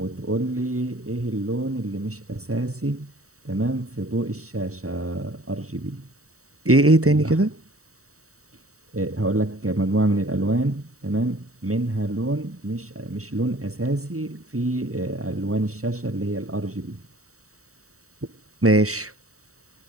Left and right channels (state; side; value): late; left; 0.64 ms